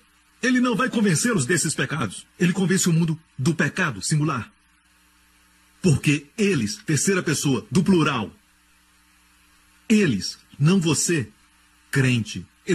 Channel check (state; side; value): identical; both; correlation 1.00